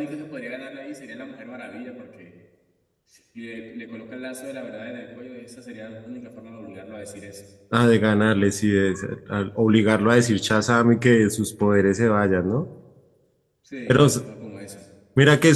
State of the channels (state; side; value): identical; both; correlation 1.00